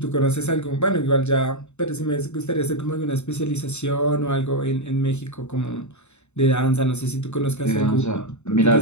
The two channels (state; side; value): late; right; 0.82 ms